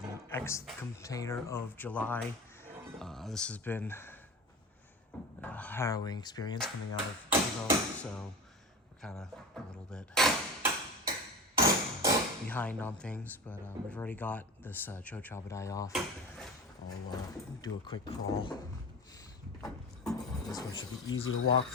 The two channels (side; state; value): both; normal; correlation 0.30